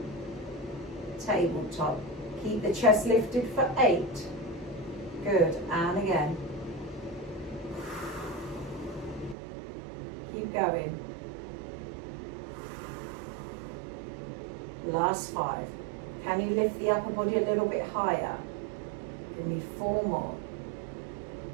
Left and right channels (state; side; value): drops out; left; at 9.3 s